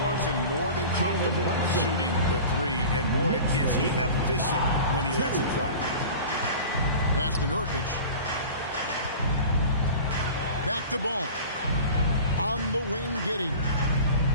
Brunson more than comfortable shooting the 3. And boy, is he efficient when he lets it fly. Pass to Nurkic. Back to Ball. On the wing, Giddey.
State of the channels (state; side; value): inverted; both; correlation -0.37